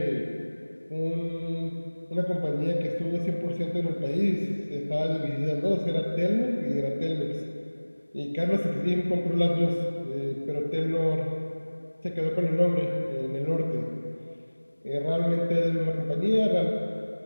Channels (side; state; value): both; inverted; correlation -1.00